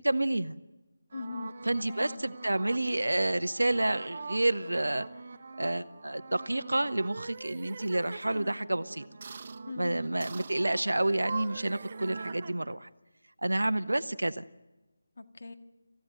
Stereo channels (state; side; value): inverted; both; correlation -0.99